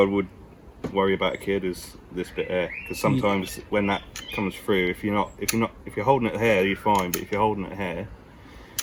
would worry about a kid is this bit here, because sometimes when that comes through, if you're holding it here, you're fine, but if you're holding it here,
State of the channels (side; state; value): both; identical; correlation 1.00